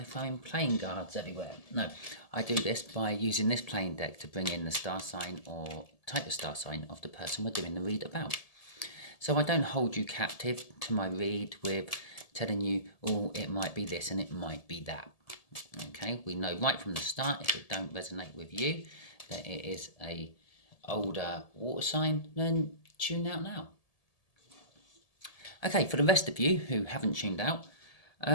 throwing playing cards everywhere. No, I do this by using this playing deck to bring in the star sign or type of star sign of the person we're doing the read about. So I don't hold you captive to my read with telling you, oh, it might be this and it might be that. Okay, we know right from the start, if it don't resonate with you, that it is a older water sign, then tune out now. Okay, for the rest of you who haven't tuned out,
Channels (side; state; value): right; late; 1.7 ms